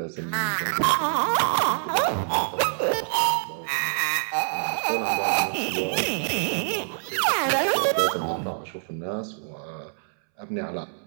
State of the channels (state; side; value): silent; left; 61 dB below the other